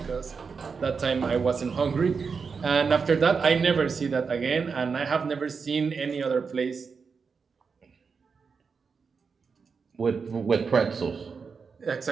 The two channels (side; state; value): left; quieter; 5.4 dB